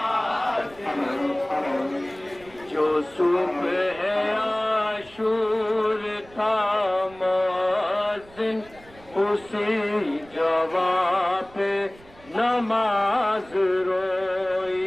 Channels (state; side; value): noise; right; rumble, 24 dB below the sound